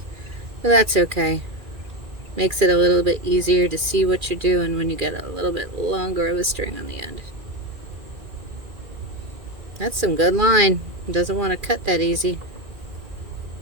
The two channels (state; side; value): late; left; 2.4 ms